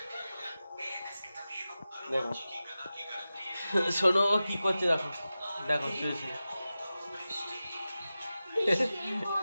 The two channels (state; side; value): inverted; both; correlation -0.94